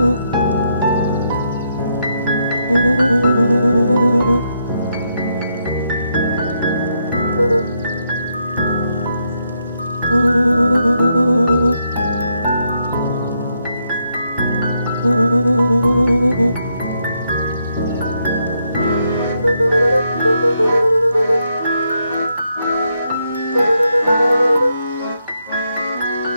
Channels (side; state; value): both; inverted; correlation -0.79